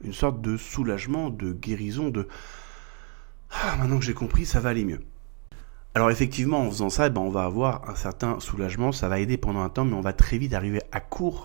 une sorte de soulagement, de guérison, de « Ah, maintenant que j'ai compris, ça va aller mieux ». Alors effectivement, en faisant ça, on va avoir un certain soulagement, ça va aider pendant un temps, mais on va très vite arriver à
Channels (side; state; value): left; quieter; 38.3 dB